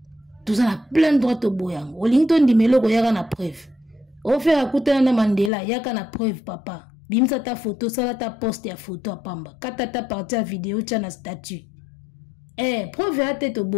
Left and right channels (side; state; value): right; drops out; at 5.5 s